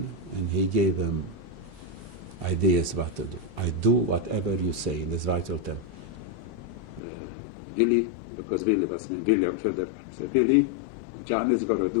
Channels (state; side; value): drops out; right; at 7.0 s